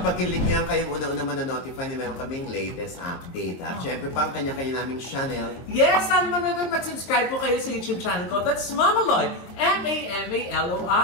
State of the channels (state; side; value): late; right; 23 ms